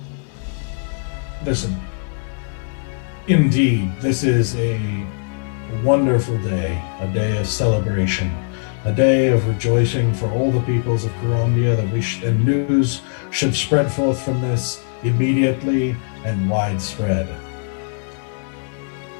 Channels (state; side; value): silent; right; 65 dB below the other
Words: listen, indeed, this is a wonderful day, a day of celebration, a day of rejoicing for all the peoples of Karandia, and news should spread forth from this immediately and widespread.